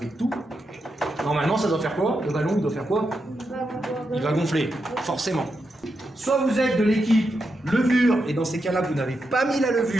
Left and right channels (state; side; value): normal; both; correlation 0.85